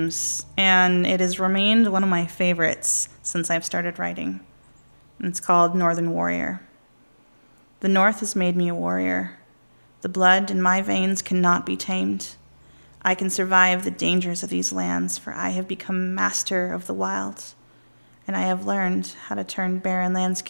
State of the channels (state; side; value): inverted; both; correlation -1.00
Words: and it has remained one of my favorites since I've started writing. It's called Northern Warrior. The North has made me a warrior. The blood in my veins cannot be tamed. I can survive the dangers of these lands, for I have become master of the wild, and I have learned how to turn barren